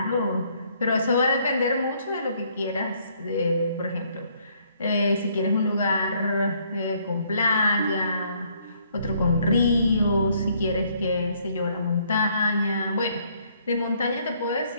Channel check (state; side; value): inverted; both; correlation -0.67